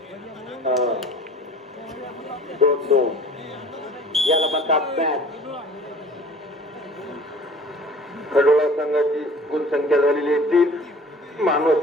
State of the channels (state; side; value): normal; both; correlation 0.47